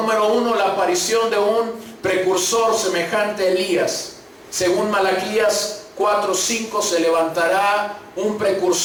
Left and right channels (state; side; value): identical; both; correlation 1.00